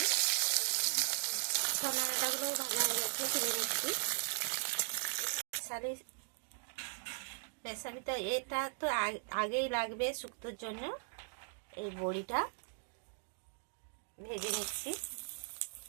সন্না ডাঁটাগুলো ভাজা হয়ে গেছে, তুলে নিচ্ছি। রেসিপিটা এটা তো আগেই লাগবে শুক্তোর জন্য। এই বড়িটা ভেজে নিচ্ছি।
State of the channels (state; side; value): silent; left; digital silence